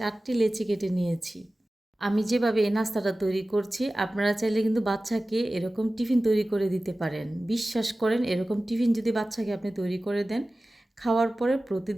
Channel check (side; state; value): both; normal; correlation 0.96